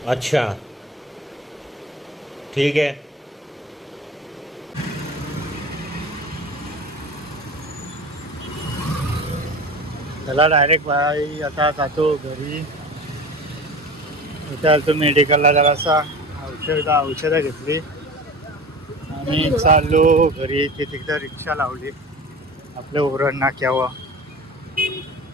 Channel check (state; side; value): normal; both; correlation 0.35